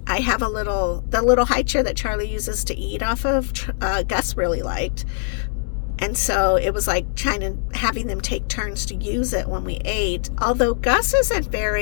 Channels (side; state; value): right; silent; digital silence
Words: I have the little high chair that Charlie uses to eat off of, Gus really liked. And so it was like having them take turns to use it when we ate. Although Gus isn't